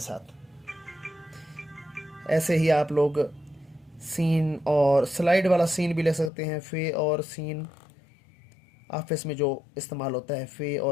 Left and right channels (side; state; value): right; drops out; at 6.3 s